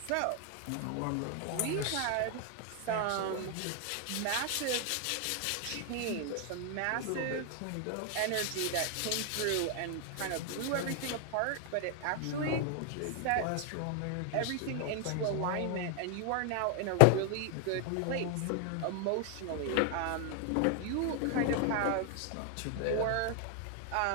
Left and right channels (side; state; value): both; different; correlation 0.00